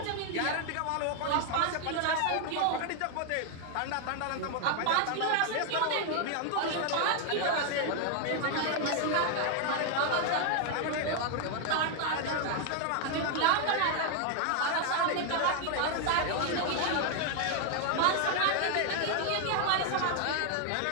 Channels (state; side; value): different; both; correlation 0.00